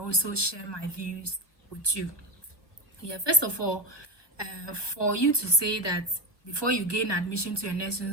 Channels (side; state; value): left; late; 1.4 ms